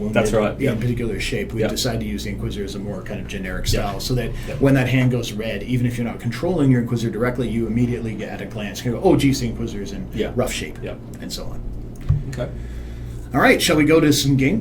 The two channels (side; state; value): both; identical; correlation 1.00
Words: That's right, in a particular shape, we decided to use the Inquisitor as a more kind of generic style, so that when that hand goes red, even if you're not controlling your Inquisitor directly, you immediately get at a glance, go, oh, geez, the Inquisitor's in rough shape, and so on. Okay. All right, shall we go to some